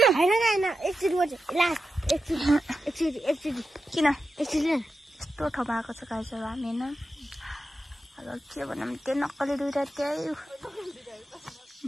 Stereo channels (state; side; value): normal; both; correlation 0.90